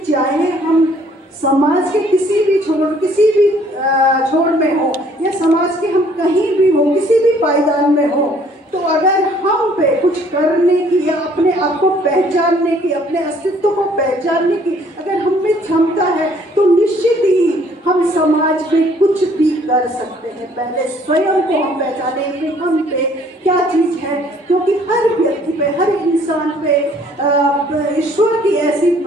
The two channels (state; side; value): normal; both; correlation 0.60